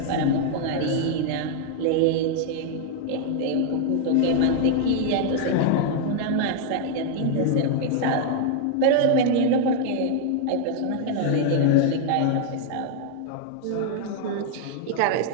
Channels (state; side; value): different; both; correlation 0.00